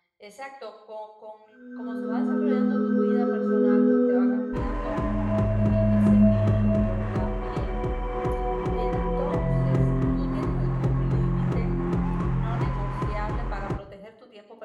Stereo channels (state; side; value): identical; both; correlation 1.00